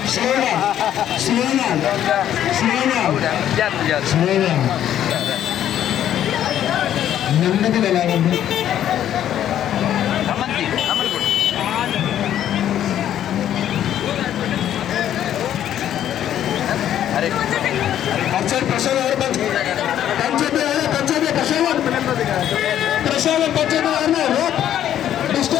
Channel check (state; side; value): quieter; right; 11.0 dB